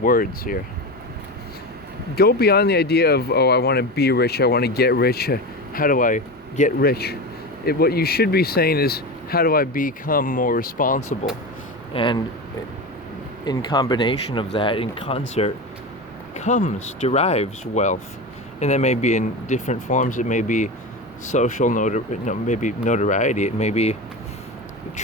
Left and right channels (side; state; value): both; normal; correlation 0.24